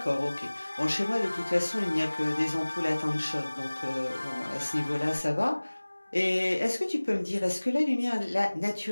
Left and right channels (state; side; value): inverted; both; correlation -1.00